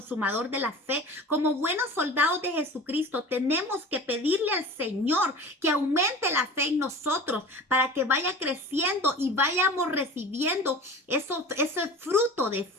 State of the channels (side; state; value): both; normal; correlation 0.37